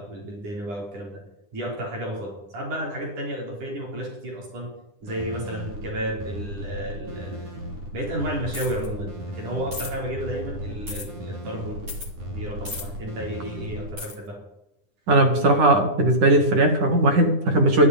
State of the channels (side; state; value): left; late; 9.9 ms